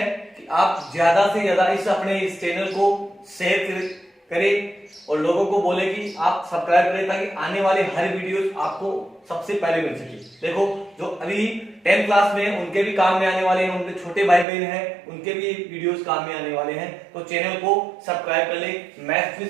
कि आप ज्यादा से ज्यादा इस चैनल को शेयर करें और लोगों को बोले कि आप सब्सक्राइब करें, ताकि आने वाले हर वीडियोस आपको सबसे पहले मिल सके। देखो जो अभी 10th क्लास में हैं उनके भी काम में आने वाले हैं, उनके छोटे भाई बहन हैं उनके भी वीडियोस काम में आने वाले हैं। तो चैनल को सब्सक्राइब कर ले, maths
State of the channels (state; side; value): drops out; left; at 14.5 s